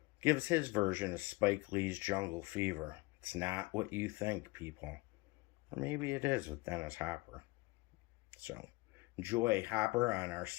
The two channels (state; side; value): quieter; right; 22.8 dB